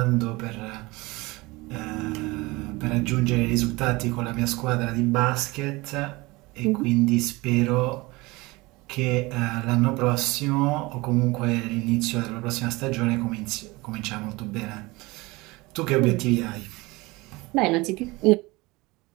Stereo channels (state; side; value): quieter; left; 22.8 dB